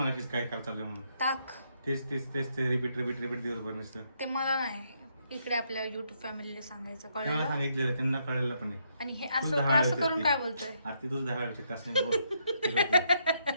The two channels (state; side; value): inverted; both; correlation -0.75